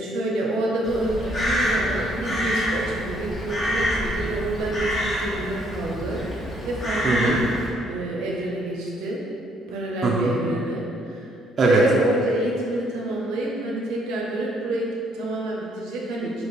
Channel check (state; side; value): normal; both; correlation 0.68